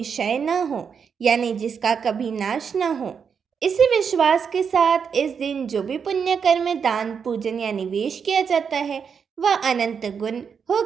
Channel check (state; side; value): quieter; left; 6.6 dB